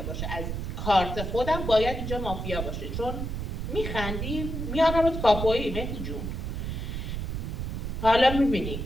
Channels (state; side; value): noise; right; rumble, 4 dB below the sound